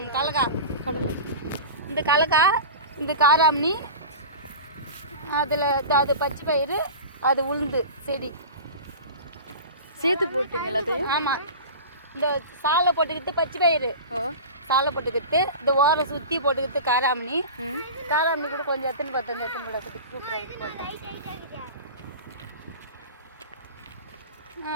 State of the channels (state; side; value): inverted; both; correlation -0.32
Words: கலக்கா கடலை, இந்த கலக்கா, இந்த காராமணி, அதில் அது பச்சை பயிறு, அது உளுந்து செடி சேர்த்து போட்டீங்க எல்லாத்தையும்? ஆமாம். இந்த சாலை போட்டுக்கிட்டு பச்சை பயிறு, சாலை போட்டுக்கிட்டு இந்த ஓரை சுற்றி போட்டுக்கிட்டு காராமணி, காராமணி கூட கொஞ்சம் எத்தனை கூட